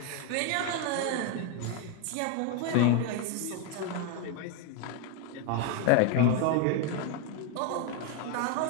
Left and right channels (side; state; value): both; different; correlation 0.01